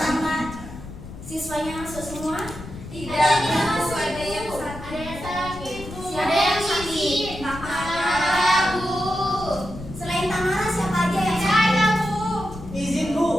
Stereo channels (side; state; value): left; noise; rumble, 12 dB below the sound